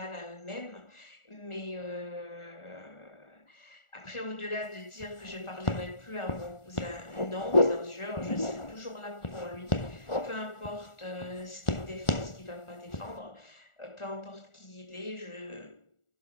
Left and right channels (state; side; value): late; right; 1.4 ms